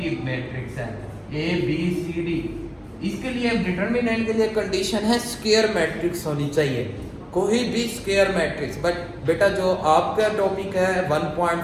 मैट्रिक्स है ए बी सी डी, इसके लिए डिटर्मिनेंट के लिए कंडीशन है स्क्वायर मैट्रिक्स होनी चाहिए, कोई भी स्क्वायर मैट्रिक्स। बट बेटा जो आपका टॉपिक है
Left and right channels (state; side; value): identical; both; correlation 1.00